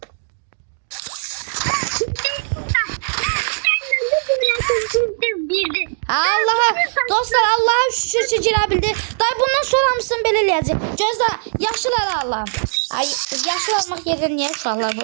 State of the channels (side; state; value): left; silent; digital silence